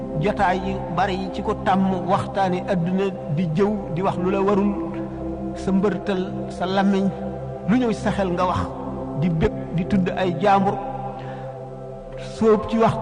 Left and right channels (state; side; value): identical; both; correlation 1.00